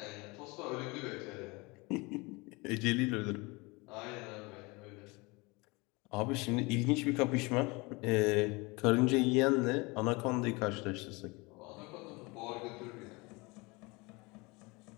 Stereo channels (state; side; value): quieter; right; 25.7 dB